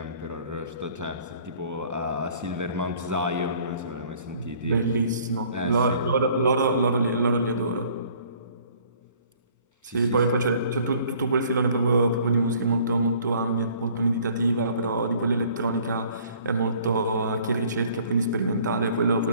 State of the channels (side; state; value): both; inverted; correlation -0.56